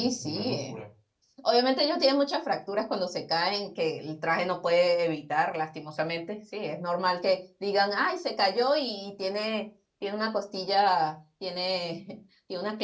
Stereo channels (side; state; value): both; identical; correlation 1.00